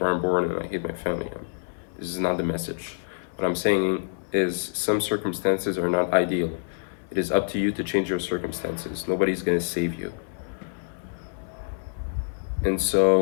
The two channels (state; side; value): silent; right; 61 dB below the other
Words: I'm born and I hate my family. This is not the message. What I'm saying is some circumstances are not ideal. It is up to you to change your circumstances. Nobody's going to save you. And